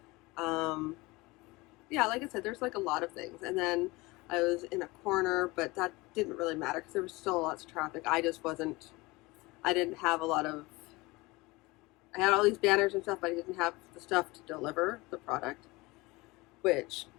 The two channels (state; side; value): quieter; right; 22.6 dB